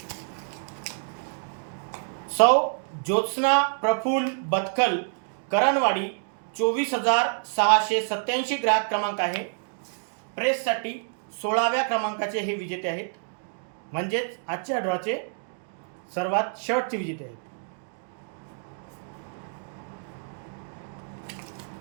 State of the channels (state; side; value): silent; left; digital silence